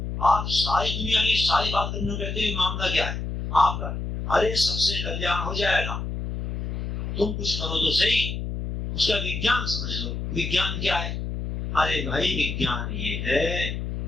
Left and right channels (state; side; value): noise; left; hum, 4 dB below the sound